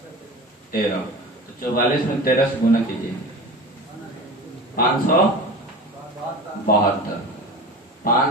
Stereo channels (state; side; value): normal; both; correlation 0.33